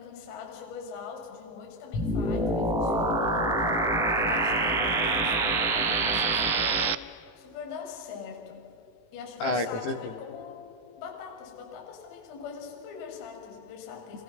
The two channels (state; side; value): late; right; 18 ms